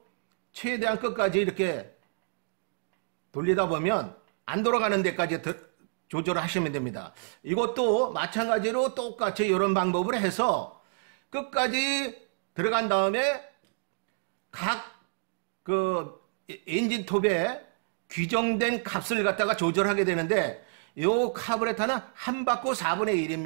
최대한 끝까지 이렇게 돌리다 보면 안 돌아가는 데까지 조절을 하시면 됩니다. 이것도 마찬가지로 똑같이 이런 방법을 해서 끝까지 들어간 다음에 각 그 엔진 톱에 규정된 값을 갖다가 조절하게 되는데 요 카브레터는 한 바퀴 4분의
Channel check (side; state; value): left; silent; digital silence